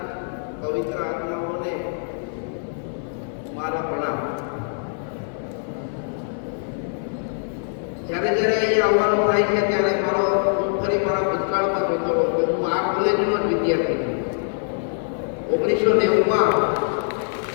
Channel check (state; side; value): silent; right; 56 dB below the other